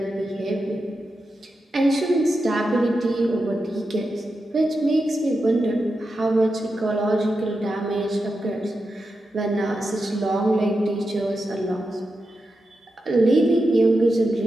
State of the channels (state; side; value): normal; both; correlation 0.89